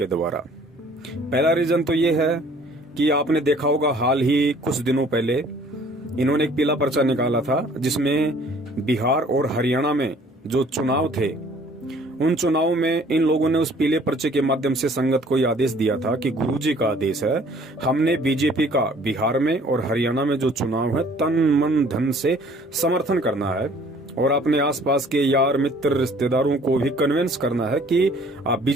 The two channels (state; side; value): normal; both; correlation 0.55